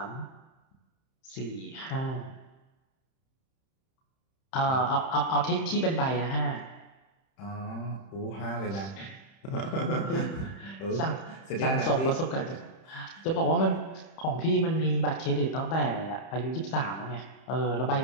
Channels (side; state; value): right; late; 31 ms